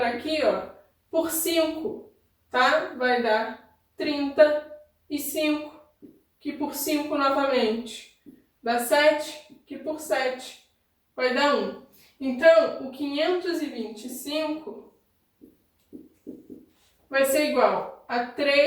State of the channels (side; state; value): both; identical; correlation 1.00